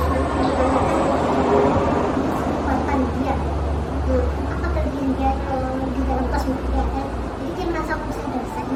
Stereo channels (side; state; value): both; identical; correlation 1.00